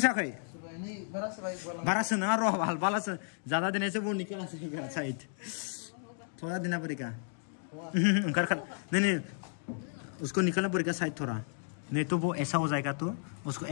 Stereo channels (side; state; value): right; silent; 56 dB below the other